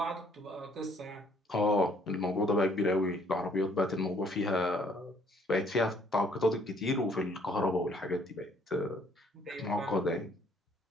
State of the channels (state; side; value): normal; both; correlation 0.62